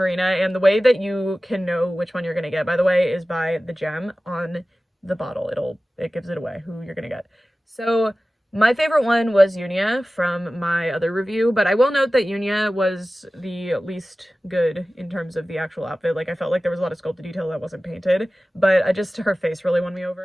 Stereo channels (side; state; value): both; normal; correlation 0.96